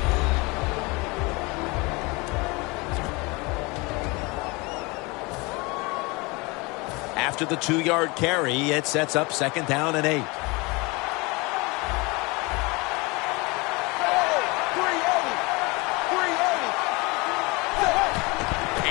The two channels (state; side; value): quieter; right; 25.9 dB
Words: After the 2-yard carry, it sets up second down and 8.